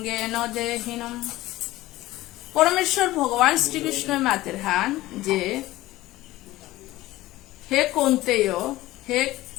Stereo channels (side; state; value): right; quieter; 17.1 dB